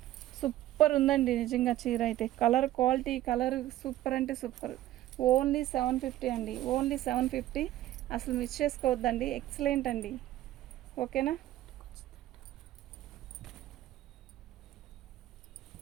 సూపర్ ఉందండి నిజంగా. చీర అయితే కలర్ క్వాలిటీ, కలర్ సూపర్ అంటే సూపర్. ఓన్లీ 750 అండి, ఓన్లీ 750. అసలు మిస్ చేసుకోవద్దండి, ఎక్సలెంట్ అండి. ఓకేనా,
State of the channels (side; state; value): left; quieter; 14.3 dB